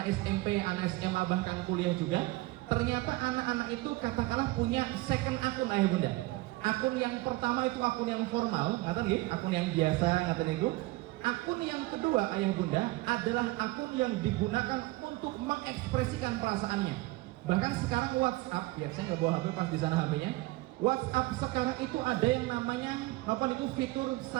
SMP, anak SMA, bahkan kuliah juga, ternyata anak-anak itu katakanlah punya second akun ayah bunda. Akun yang pertama itu akun yang formal, katanya akun yang biasa, katanya itu. Akun yang kedua ayah bunda adalah akun yang digunakan untuk mengekspresikan perasaannya. Bahkan sekarang WhatsApp, ya saya mau bawa HP pas di sana HP-nya. WhatsApp sekarang itu ada yang namanya apa itu fitur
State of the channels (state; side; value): quieter; left; 20.2 dB